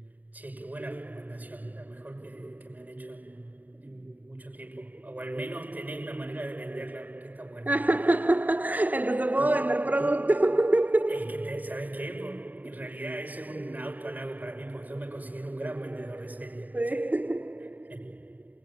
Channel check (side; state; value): left; late; 0.080 ms